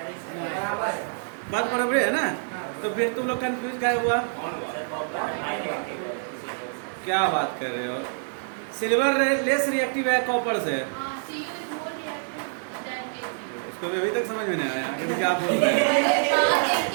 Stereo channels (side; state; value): left; silent; digital silence